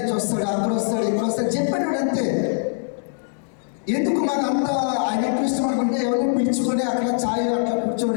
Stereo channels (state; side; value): silent; right; digital silence